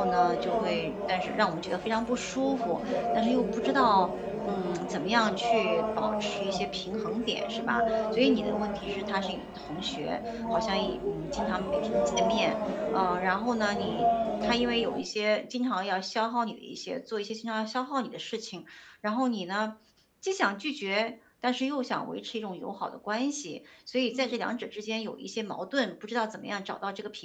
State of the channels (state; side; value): identical; both; correlation 1.00